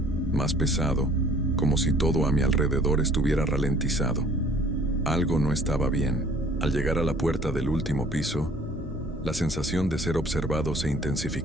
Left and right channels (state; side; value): normal; both; correlation 0.55